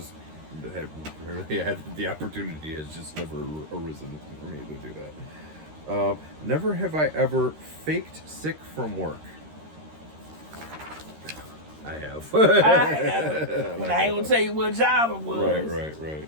have rarely had the opportunity. Has just never arisen for me to do that. Never have I ever faked sick from work. I have. I have. But I ain't gonna tell you what job it was. Right.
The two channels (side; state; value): left; late; 13 ms